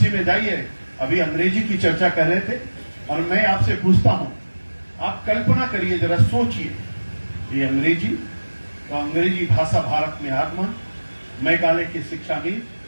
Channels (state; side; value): inverted; both; correlation -1.00